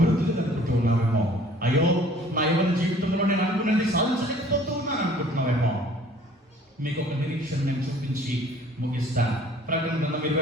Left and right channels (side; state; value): both; normal; correlation 0.53